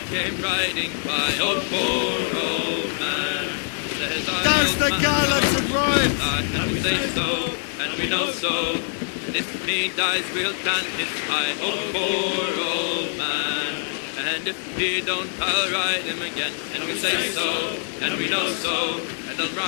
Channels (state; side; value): silent; right; 63 dB below the other